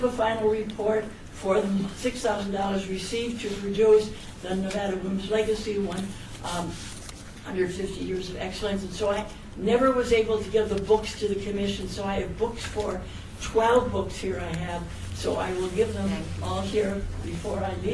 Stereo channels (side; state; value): both; identical; correlation 1.00